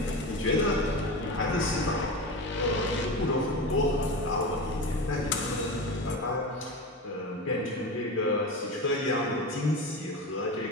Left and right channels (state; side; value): normal; both; correlation 0.25